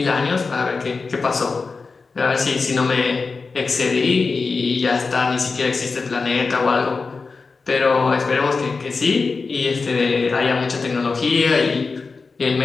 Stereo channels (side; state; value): right; quieter; 4.4 dB